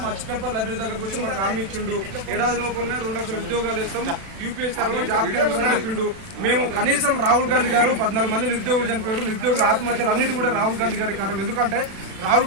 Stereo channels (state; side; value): late; left; 36 ms